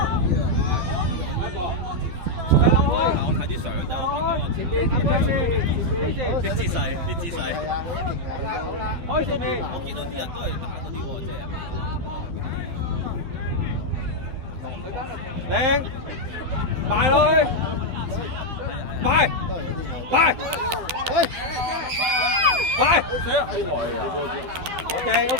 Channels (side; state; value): left; late; 12 ms